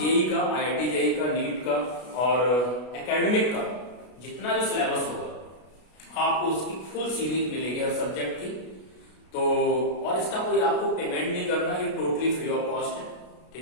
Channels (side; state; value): right; late; 33 ms